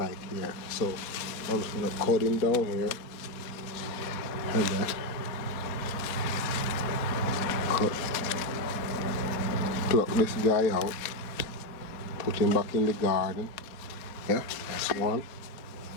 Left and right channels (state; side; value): late; right; 4.1 ms